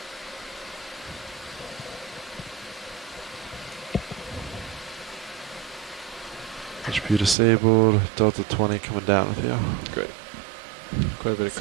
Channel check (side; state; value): left; drops out; at 7.4 s